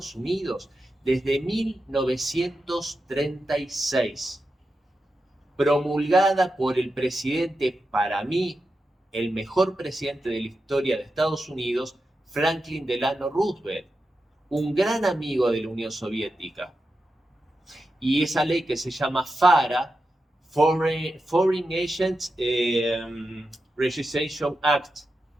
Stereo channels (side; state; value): both; normal; correlation 0.89